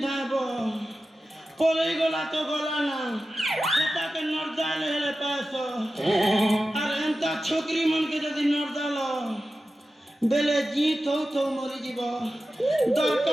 धाबो पलई गला तो गला ना सेटा के नरदाल हेले पासो और एंता छोकरी मन के जदी नरदाल बेले जीत हो तो मरी जीवो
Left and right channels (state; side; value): normal; both; correlation 0.93